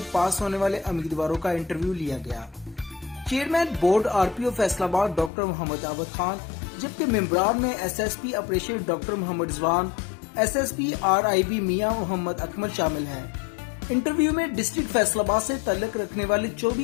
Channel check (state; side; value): drops out; right; at 5.3 s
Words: पास होने वाले उम्मीदवारों का इंटरव्यू लिया गया। Chairman board RPO Faisalabad doctor Mohammad Abid Khan, जबकि मेंबरान में SSP operation doctor Mohammad Rizwan, SSP RIB Mian Mohammad Akmal शामिल हैं। इंटरव्यू में डिस्ट्रिक्ट फैसलाबाद से ताल्लुक रखने वाले